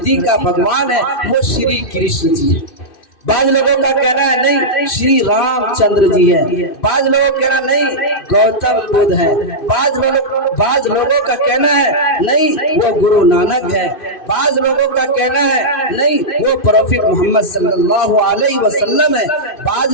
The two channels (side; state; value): right; late; 2.6 ms